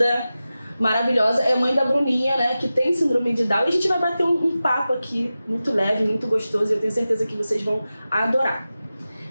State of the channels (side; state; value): both; inverted; correlation -0.94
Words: maravilhosa, é mãe da Bruninha, né, que tem síndrome de Down. E a gente vai bater um papo aqui muito leve, muito gostoso e eu tenho certeza que vocês vão adorar.